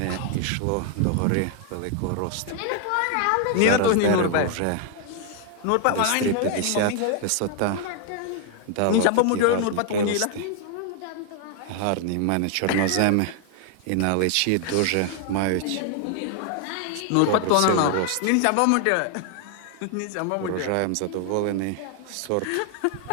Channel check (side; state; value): both; different; correlation 0.00